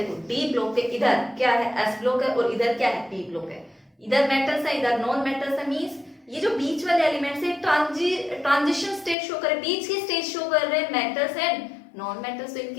डी ब्लॉक के इधर क्या है एस ब्लॉक है और इधर क्या है पी ब्लॉक है, इधर मेटल्स है इधर नॉन मेटल्स है, मींस ये जो बीच वाले एलिमेंट्स है ट्रांजिशन स्टेट शो कर रहे हैं, बीच की स्टेट शो कर रहे हैं मेटल्स एंड नॉन मेटल्स। तो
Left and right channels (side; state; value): right; drops out; at 9.2 s